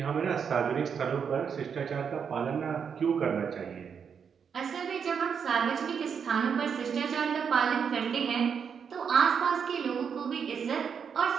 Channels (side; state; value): left; quieter; 6.9 dB